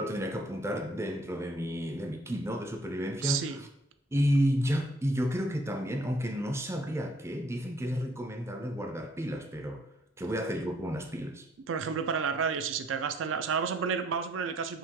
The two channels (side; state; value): both; normal; correlation 0.64